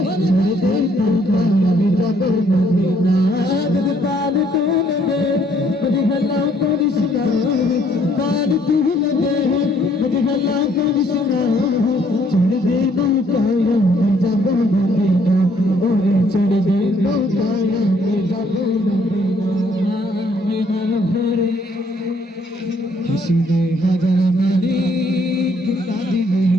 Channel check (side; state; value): both; normal; correlation 0.65